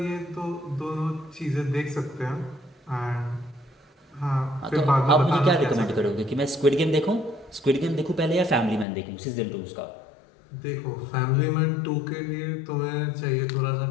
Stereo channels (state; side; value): drops out; right; at 8.8 s